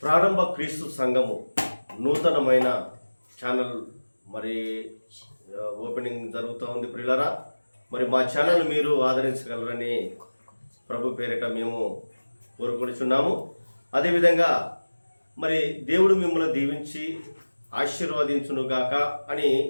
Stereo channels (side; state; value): both; inverted; correlation -1.00